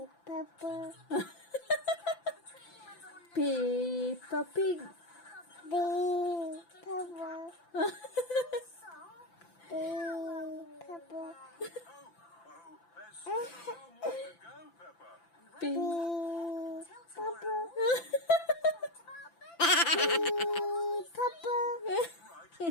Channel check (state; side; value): late; right; 5.9 ms